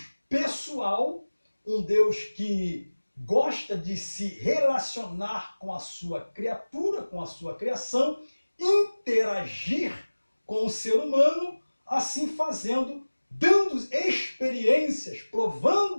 pessoal, um Deus que gosta de se relacionar com a sua criatura, com a sua criação, interagir com o ser humano, assim fazendo, dando experiências,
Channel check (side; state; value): both; inverted; correlation -1.00